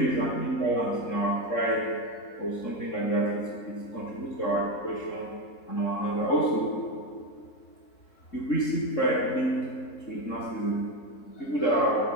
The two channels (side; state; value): right; late; 3.7 ms